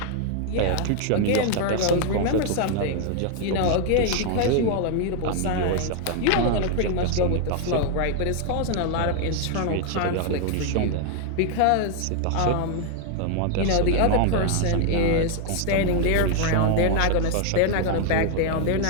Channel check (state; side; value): different; both; correlation 0.00